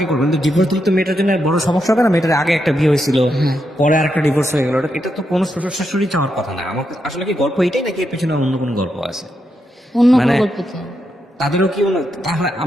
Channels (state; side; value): normal; both; correlation 0.83